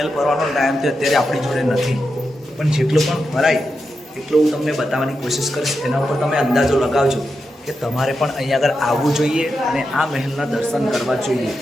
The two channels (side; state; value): both; normal; correlation 0.88